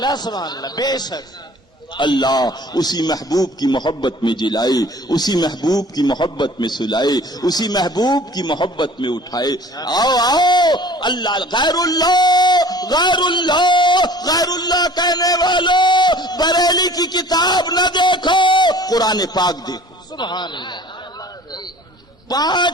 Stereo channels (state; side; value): normal; both; correlation 0.47